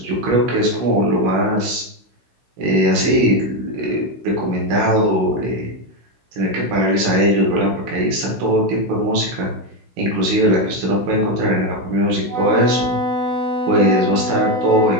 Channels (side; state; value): left; late; 16 ms